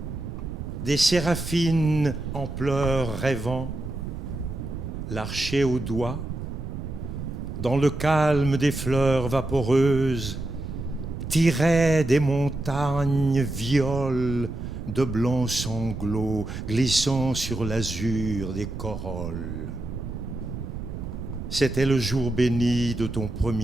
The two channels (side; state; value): right; noise; rumble, 7 dB below the sound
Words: des séraphines en pleurs rêvant, l'archer au doigt, dans le calme des fleurs vaporeuses, tiraient des montagnes violes de blancs sanglots glissant sur l'azur des corolles. C'était le jour béni de ton